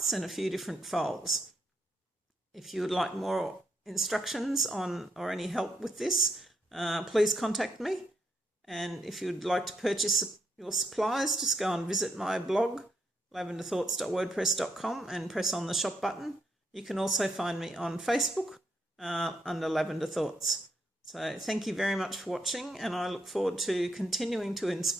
and a few different folds. If you would like more instructions on or any help with this, please contact me. And if you'd like to purchase your supplies, just go and visit my blog, lavenderthoughts.wordpress.com, and press on the shop button. You can also find me on Facebook under Lavender Thoughts. So thank you very much for watching, and I look forward to continuing to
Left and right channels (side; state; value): both; normal; correlation 0.78